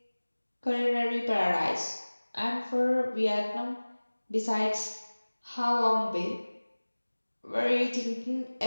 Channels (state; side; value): inverted; both; correlation -1.00